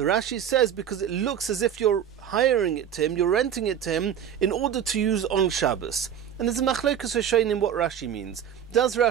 Rashi says because it looks as if you're hiring it to him, you're renting it to him in order to use on Shabbos. And there's a machlokes in what Rashi means. Does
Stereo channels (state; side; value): quieter; left; 9.1 dB